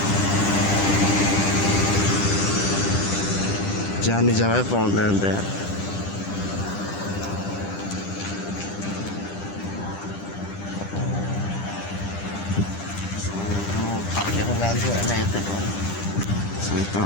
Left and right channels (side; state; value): right; late; 10 ms